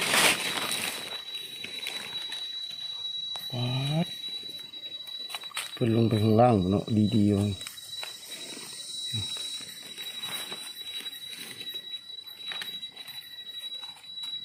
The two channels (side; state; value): both; identical; correlation 1.00